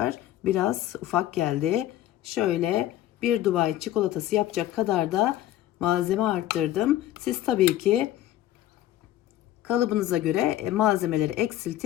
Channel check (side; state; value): right; quieter; 13.4 dB